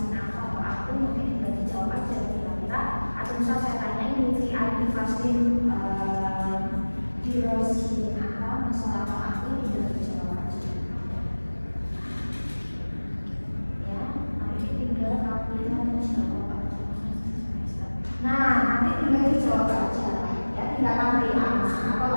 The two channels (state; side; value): inverted; both; correlation -1.00